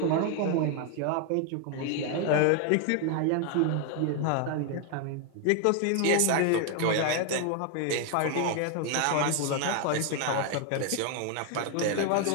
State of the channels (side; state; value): both; different; correlation 0.01